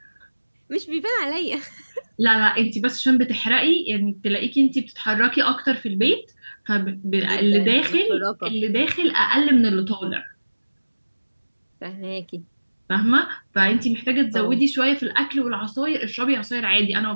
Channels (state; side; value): inverted; both; correlation -1.00